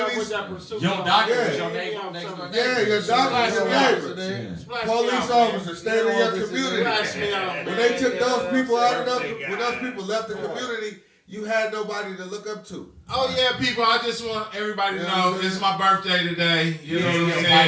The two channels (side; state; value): both; identical; correlation 1.00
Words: doctor was your neighbor next door. Yeah, your doctor was your neighbor. Police officers stayed in your community. When they took those people out of when those people left the community, you had nobody to look up to. Oh yeah, people! I just want everybody to know it's my birthday today. You know what I'm